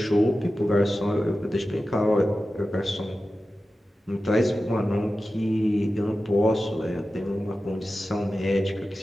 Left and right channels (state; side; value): normal; both; correlation 0.94